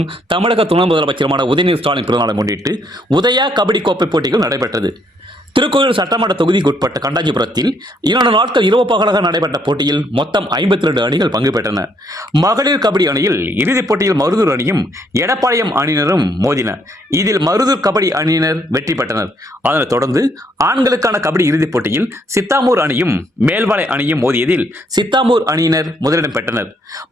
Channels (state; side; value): normal; both; correlation 0.70